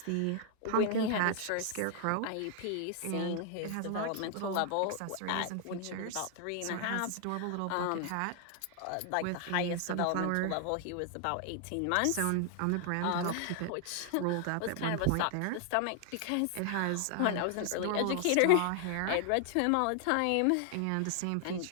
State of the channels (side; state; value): both; different; correlation 0.00